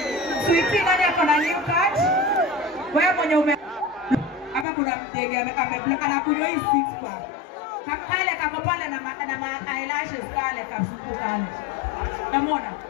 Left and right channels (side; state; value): right; drops out; at 4.7 s